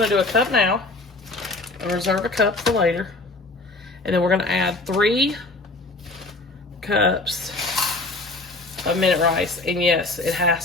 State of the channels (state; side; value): quieter; right; 3.1 dB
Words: to do a cup now and reserve a cup for later. And then we're going to add 3 cups of minute rice, and yes, it